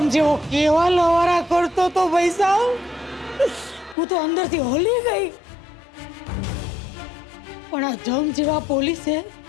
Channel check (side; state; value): right; drops out; at 4.0 s